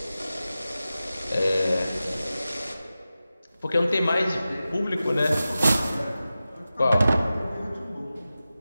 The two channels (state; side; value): inverted; both; correlation -0.94